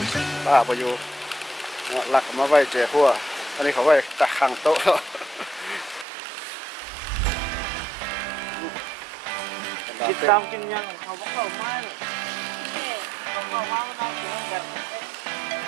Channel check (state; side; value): drops out; left; at 6.1 s